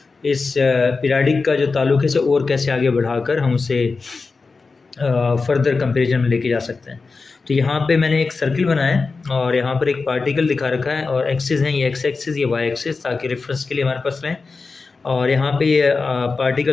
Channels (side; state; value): right; quieter; 4.3 dB